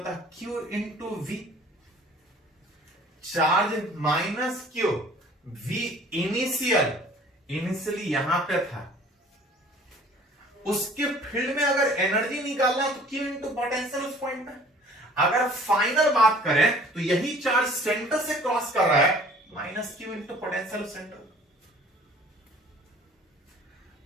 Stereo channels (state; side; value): normal; both; correlation 0.51